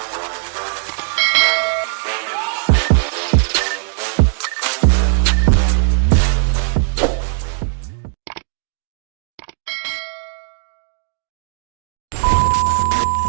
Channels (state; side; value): silent; left; digital silence